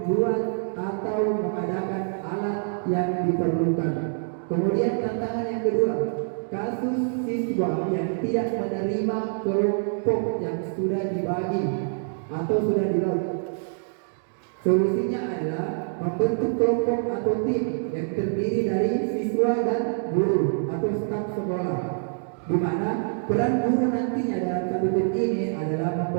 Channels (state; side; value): silent; left; digital silence